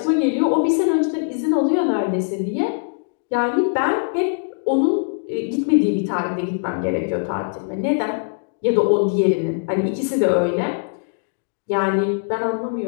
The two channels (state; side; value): silent; right; digital silence